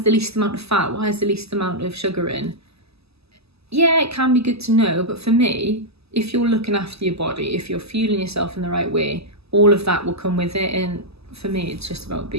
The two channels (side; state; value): left; late; 0.79 ms